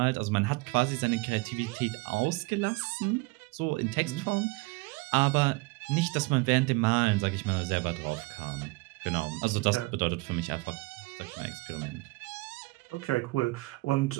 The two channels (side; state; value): left; quieter; 24.2 dB